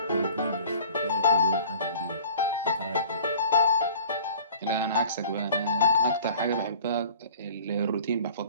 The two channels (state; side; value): inverted; both; correlation -0.46